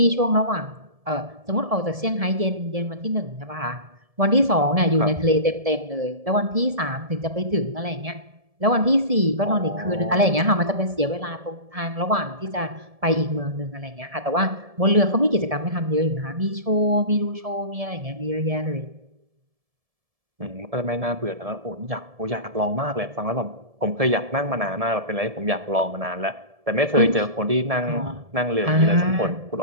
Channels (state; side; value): late; left; 1.7 ms